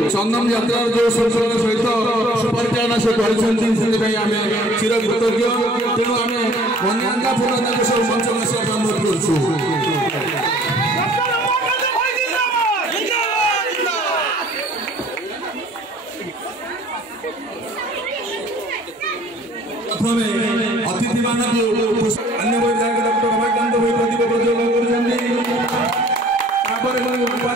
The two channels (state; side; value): normal; both; correlation 0.53